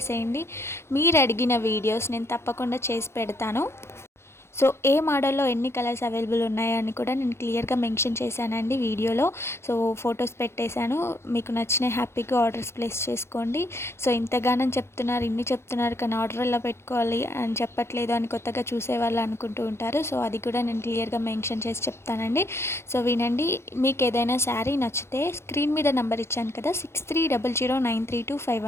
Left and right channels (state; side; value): late; right; 0.12 ms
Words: మీరు అడిగిన వీడియోస్ నేను తప్పకుండా చేసి పెడతాను. సో ఏ మోడల్లో ఎన్ని కలర్స్ అవైలబుల్ ఉన్నాయని కూడా నేను క్లియర్గా మెన్షన్ చేశానండి వీడియోలో. సో ఫొటోస్ పెట్టేశాను. మీకు నచ్చిన హ్యాపీగా ఆర్డర్స్ ప్లేస్ చేసుకోండి. సో ఇంతగానం చెప్తున్నారు, ఇన్ని చెప్తున్నారు, కానీ ఆర్డర్ ఎలా పెట్టుకోవాలి అని చెప్పట్లేదు అని కొత్తగా చూసేవాళ్ళు అనుకుంటూ ఉంటారు. సో అది కూడా నేను క్లియర్గా మెన్షన్ చేసి చెప్తానండి. సో వినండి. మీకు ఏదైనా శారీ నచ్చితే స్క్రీన్ మీద నెంబర్ ఇచ్చాను కదా,